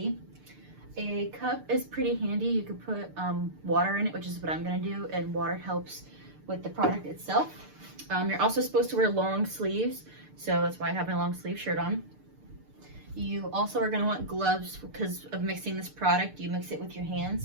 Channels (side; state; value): left; late; 6.7 ms